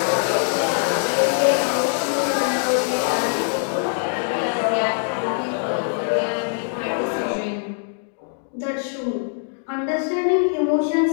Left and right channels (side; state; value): right; silent; digital silence